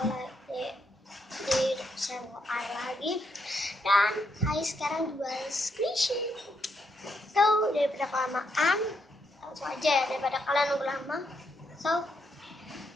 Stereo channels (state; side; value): normal; both; correlation 0.79